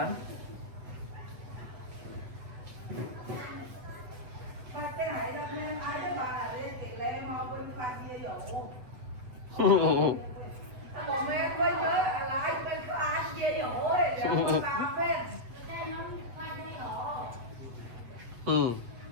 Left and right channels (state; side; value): late; left; 8.6 ms